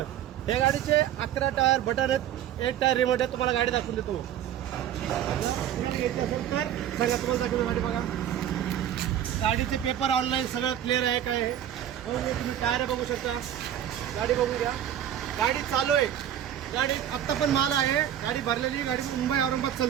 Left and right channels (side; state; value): left; quieter; 10.8 dB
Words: या गाडीचे 11 टायर बटन आहेत, 1 टायर रिमोट आहे. तुम्हाला गाडी दाखवून देतो. घ्यायची असेल तर सांगा, तुम्हाला दाखवतो गाडी. बघा, गाडीचे पेपर ऑनलाईन सगळं क्लिअर आहे. काय आहे तुम्ही टायर बघू शकता. गाडी बघून घ्या. गाडी चालू आहे. गाडी आत्ता पण माल आहे. गाडी भरलेली. गाडी मुंबई औरंगाबाद